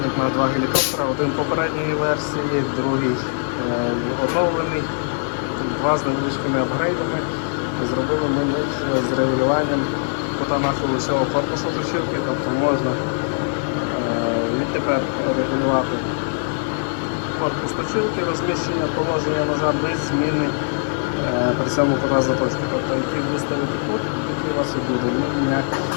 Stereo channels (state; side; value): silent; right; 57 dB below the other